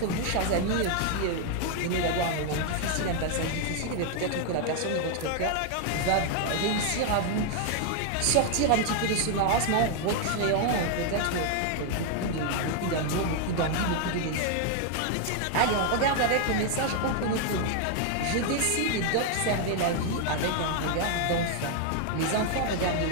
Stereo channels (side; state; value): both; different; correlation 0.00